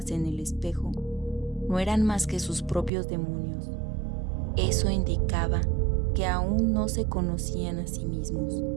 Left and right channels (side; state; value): left; drops out; at 2.9 s